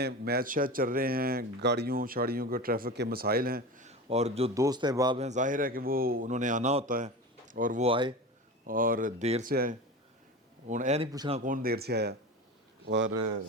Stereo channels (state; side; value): normal; both; correlation 0.29